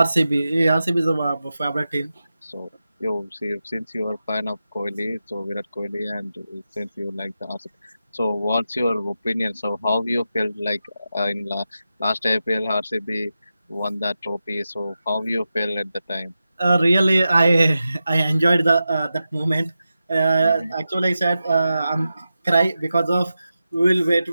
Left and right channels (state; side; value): inverted; both; correlation -0.91